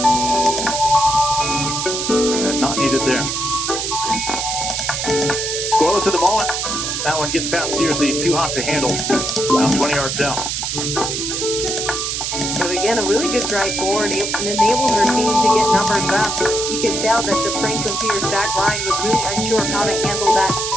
Not needed there. Scoreless at the moment. That one gets past Searcy, too hot to handle. About 20 yards out. But again, a really good drive forward and enabled her team to get numbers up. You could tell that the Franklin Pierce back line was really unsure of how to handle that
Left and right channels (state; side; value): noise; right; hiss, 2 dB below the sound